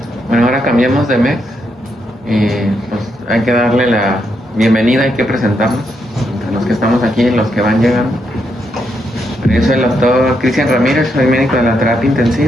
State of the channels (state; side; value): normal; both; correlation 0.80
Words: Bueno, ahora cambiamos de mes y pues hay que darle la bienvenida, hay que presentarnos a los que estamos aquí y los que van llegando. Yo soy el doctor Cristian Ramírez, soy médico de la terapia